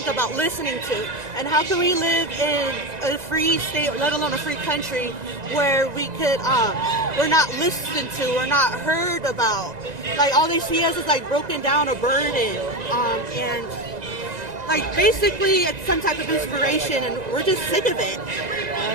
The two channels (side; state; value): left; late; 1.9 ms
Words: about listening to. And how can we live in a free state, let alone a free country, where we're not listened to, we're not heard about. Like all they see us is like broken down or burdened, and like basically it's some type of inspiration, and we're just sick of it.